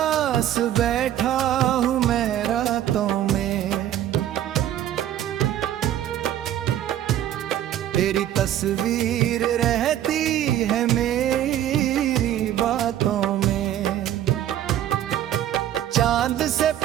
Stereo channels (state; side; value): quieter; left; 11.8 dB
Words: बैठा हूँ मैं रातों में, तेरी तस्वीर रहती है मेरी बातों में। चांद से